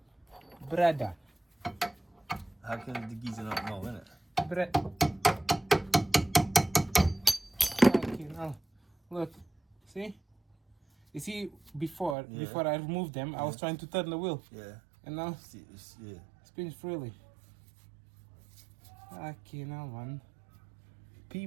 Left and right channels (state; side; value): drops out; left; at 12.2 s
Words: Brother. How can the geezer not know, innit? Look. See? You see, before I removed them, I was trying to turn the wheel. Yeah. And now Yeah. spins freely. Fucking hell, man.